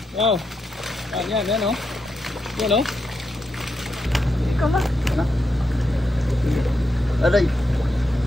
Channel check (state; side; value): normal; both; correlation 0.84